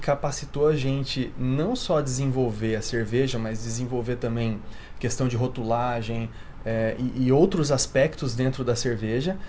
a gente não só desenvolver a cerveja, mas desenvolver também questão de rotulagem e outros aspectos dentro da cerveja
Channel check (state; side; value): identical; both; correlation 1.00